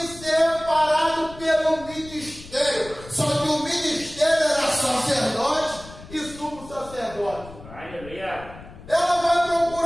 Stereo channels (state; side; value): noise; left; rumble, 17 dB below the sound